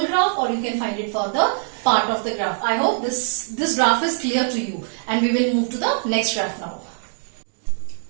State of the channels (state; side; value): silent; left; digital silence